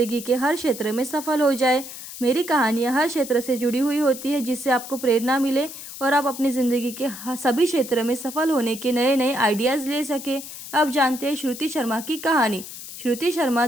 के हर क्षेत्र में सफल हो जाए। मेरी कहानियाँ हर क्षेत्र से जुड़ी हुई होती है, जिससे आपको प्रेरणा मिले और आप अपनी ज़िंदगी के सभी क्षेत्र में सफल होने के नए नए आइडियाज़ ले सके। अब जानते हैं श्रुति शर्मा की कहानी। श्रुति शर्मा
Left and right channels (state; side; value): noise; left; hiss, 12 dB below the sound